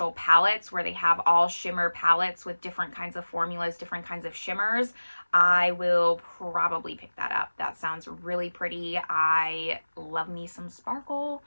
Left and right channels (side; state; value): both; inverted; correlation -1.00